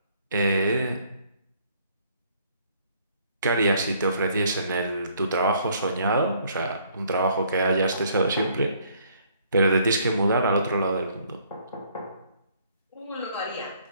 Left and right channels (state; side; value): inverted; both; correlation -0.63